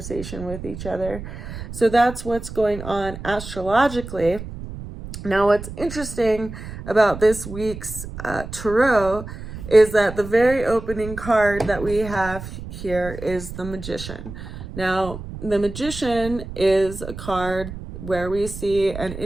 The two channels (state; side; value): noise; right; rumble, 10 dB below the sound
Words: with each other. So that's what's going on astrologically. Now, what's interesting about this week's tarot is that the very opening card that we have here is the Magician. Now, the Magician is a card where we see an